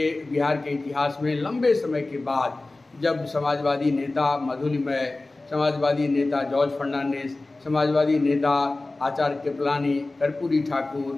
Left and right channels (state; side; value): quieter; right; 3.1 dB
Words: बिहार के इतिहास में लंबे समय के बाद जब समाजवादी नेता मधुलिमय, समाजवादी नेता जॉर्ज फर्नांडिस, समाजवादी नेता आचार्य कृपलानी, कर्पूरी